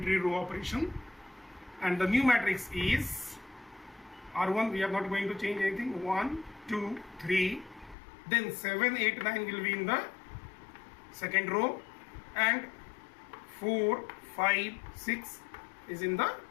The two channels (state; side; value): drops out; right; at 8.0 s